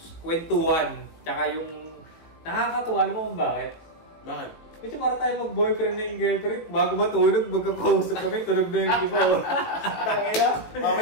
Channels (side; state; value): right; late; 18 ms